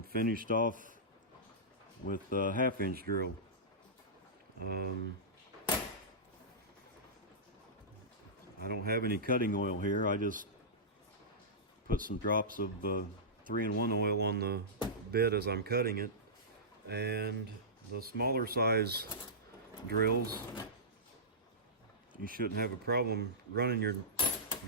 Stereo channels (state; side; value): normal; both; correlation -0.17